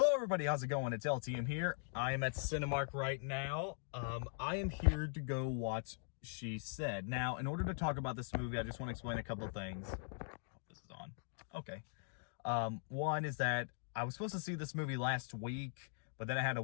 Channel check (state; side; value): silent; right; digital silence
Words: everybody, how's it going? It's LTM here. I am at Cinemark right now. I am here to go watch She Said. Now, in order to talk about this movie, I just want to explain a couple of things. Hope this is on. Okay. One is that I was supposed to see this movie last week, but then I had to